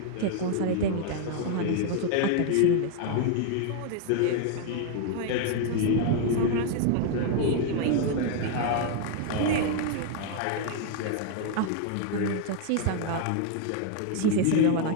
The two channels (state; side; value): different; both; correlation 0.00